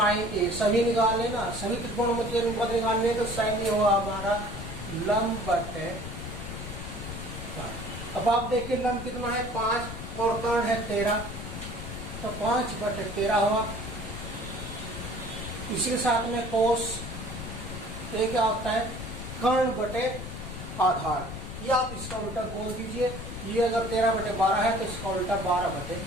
ए। सभी निकाल लेना, सभी त्रिकोणों के अनुपात निकालने, तो साइन ए हुआ हमारा लंब बटे। अब आप देखिए लंब कितना है? 5 और कर्ण है 13, तो 5/13 हुआ। इसी साथ में कोस ये क्या होता है? कर्ण बटे आधार। या आप इसका उल्टा बोल दीजिए, ये अगर 13/12 है तो इसका उल्टा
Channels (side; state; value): left; noise; rumble, 8 dB below the sound